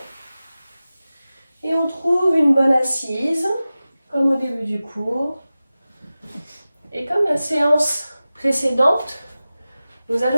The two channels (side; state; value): both; inverted; correlation -0.96